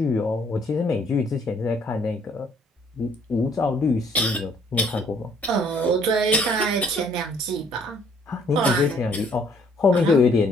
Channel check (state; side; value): normal; both; correlation 0.62